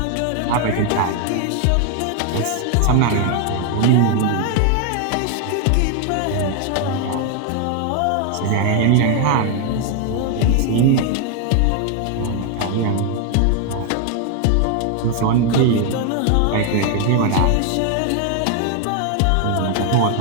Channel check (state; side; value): different; both; correlation 0.01